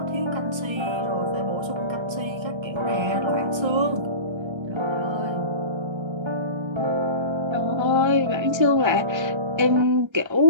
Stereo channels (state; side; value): late; left; 1.3 ms